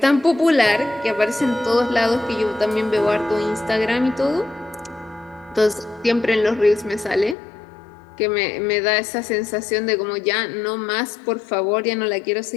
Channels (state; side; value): drops out; right; at 7.4 s